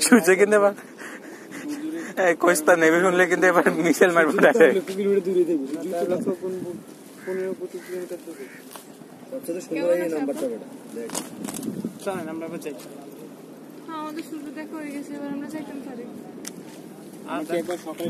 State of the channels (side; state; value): both; identical; correlation 1.00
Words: সূর্য কিন্তু এবার কইস্তা নেবে শুনলে কিন্তু এবার মিসাইল মারবো। আমাদের সূর্য দেখা হয়ে গেছে, এবার আমরা যাইতাম পারি। একবার